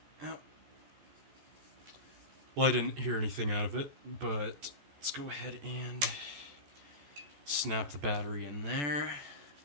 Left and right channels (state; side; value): late; left; 14 ms